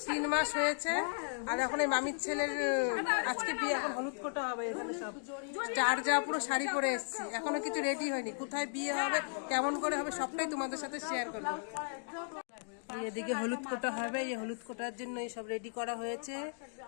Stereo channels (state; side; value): silent; right; digital silence